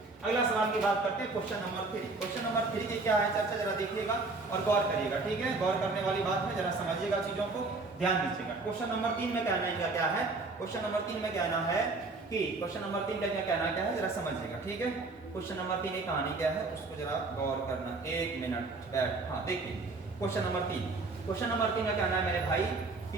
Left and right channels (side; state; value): left; quieter; 3.6 dB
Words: अगला सवाल की बात करते हैं क्वेश्चन नंबर 3। क्वेश्चन नंबर 3 की क्या है चर्चा जरा देखिएगा और गौर करिएगा, ठीक है। गौर करने वाली बात है, जरा समझिएगा चीजों को, ध्यान दीजिएगा। क्वेश्चन नंबर 3 में कहना है क्या है, क्वेश्चन नंबर 3 में कहना है कि क्वेश्चन नंबर 3 का कहना क्या है जरा समझिएगा, ठीक है। क्वेश्चन नंबर 3 की कहानी क्या है उसको जरा गौर करना, 1 मिनट बैठ। हाँ देखिए क्वेश्चन नंबर 3, क्वेश्चन नंबर 3 का कहना है मेरे भाई